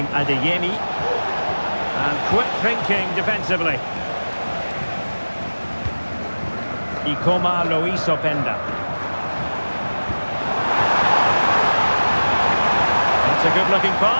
Adeyemi. And quick thinking defensively. Ikoma Lois Openda. That's a good-looking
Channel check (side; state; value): both; inverted; correlation -1.00